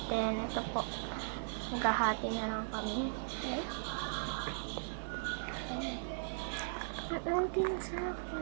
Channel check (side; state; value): left; silent; 52 dB below the other